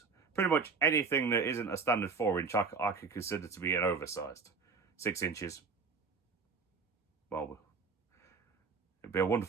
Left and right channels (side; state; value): left; quieter; 4.9 dB